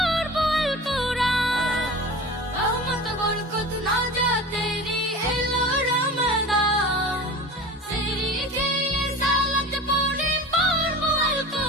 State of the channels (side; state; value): both; normal; correlation 0.35